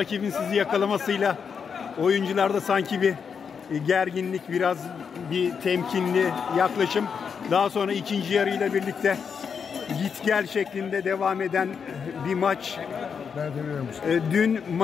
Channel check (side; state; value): right; quieter; 6.5 dB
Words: sizi yakalamasıyla oyuncularda sanki bir gerginlik, biraz bir temkinli yaklaşım. Daha sonra ikinci yarıyla birlikte git gel şeklinde devam eden bir maç. Dün